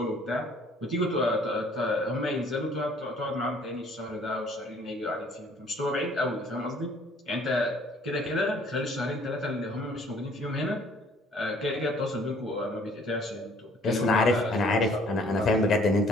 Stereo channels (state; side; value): normal; both; correlation 0.58